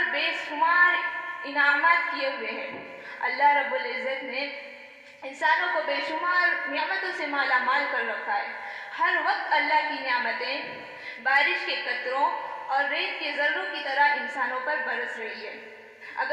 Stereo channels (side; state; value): both; identical; correlation 1.00